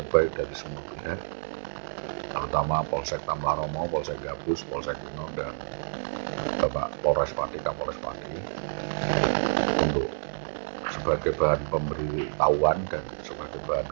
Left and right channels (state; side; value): silent; left; digital silence